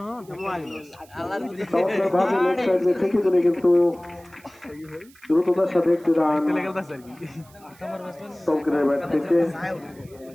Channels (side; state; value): right; noise; hiss, 27 dB below the sound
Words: থেকে দিলে কিন্তু দ্রুততার সাথে একটি রান তৌকিরের ব্যাট থেকে